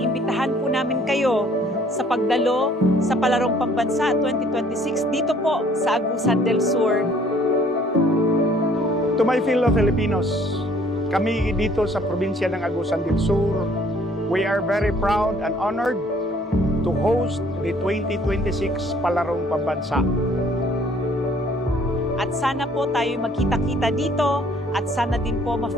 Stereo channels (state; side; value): normal; both; correlation 0.59